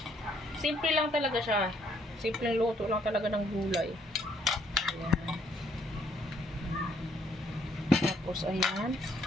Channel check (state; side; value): normal; both; correlation 0.68